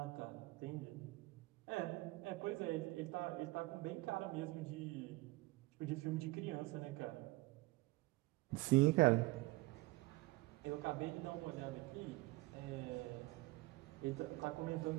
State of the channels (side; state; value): left; quieter; 21.6 dB